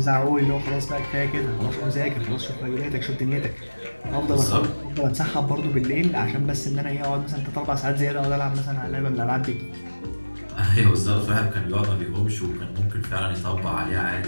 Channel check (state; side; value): inverted; both; correlation -1.00